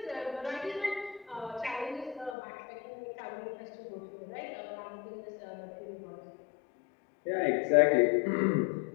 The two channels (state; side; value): drops out; right; at 2.4 s